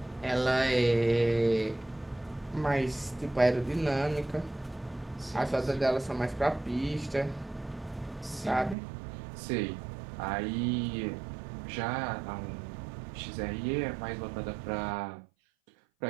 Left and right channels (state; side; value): drops out; left; at 8.8 s